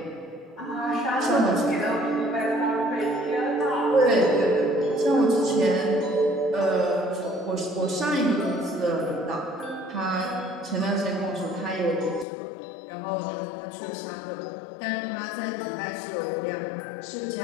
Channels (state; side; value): drops out; right; at 12.2 s